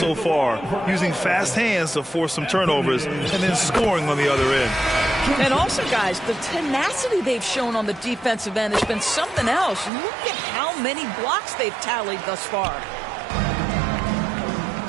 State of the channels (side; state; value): left; drops out; at 9.9 s